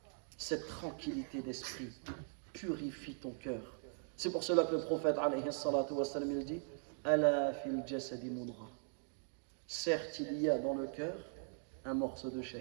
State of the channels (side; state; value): left; silent; digital silence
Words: cette tranquillité d'esprit. Purifie ton cœur. C'est pour cela que le prophète alayhi salatu wassalam, il dit Ala fil jasadi mudra. Certes, il y a dans le cœur un morceau de